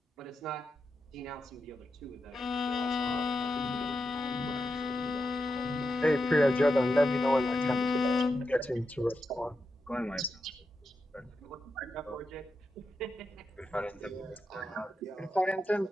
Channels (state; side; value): normal; both; correlation 0.88